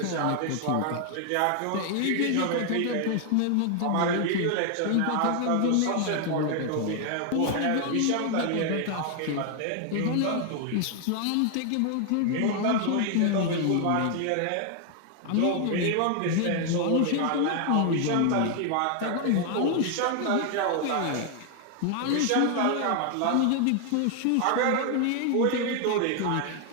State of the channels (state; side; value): different; both; correlation 0.00